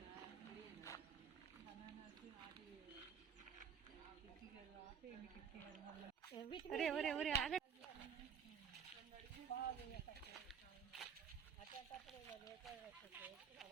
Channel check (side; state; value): left; quieter; 7.3 dB